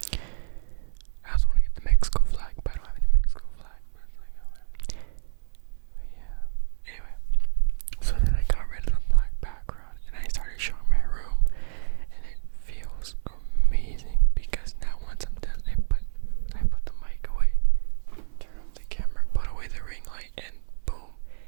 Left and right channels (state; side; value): silent; left; 58 dB below the other